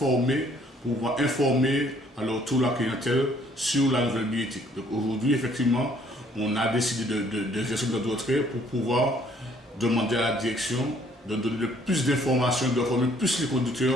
pour pouvoir informer alors toute la clientèle sur la nouvelle bioéthique. Donc aujourd'hui, effectivement, on a décidé d'exercer notre retrait pour pouvoir demander à la direction de donner plus d'informations, de former plus les conducteurs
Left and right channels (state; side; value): normal; both; correlation 0.62